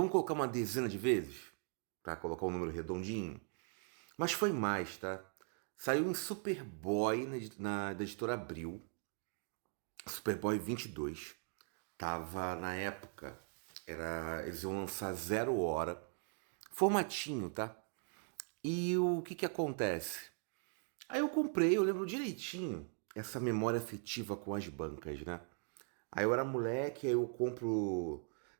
colocar uma dezena de vezes? Pra colocar um número redondinho? Mas foi mais, tá? Saiu em Superboy da editora Abril. Superboy 22. Tava na época. Eles iam lançar 0 hora. Formatinho, tá? E o que acontece? Aí eu comprei, eu lembro direitinho essa memória afetiva com as bancas, né? Aí eu era moleque, aí eu compro.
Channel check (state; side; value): silent; left; 51 dB below the other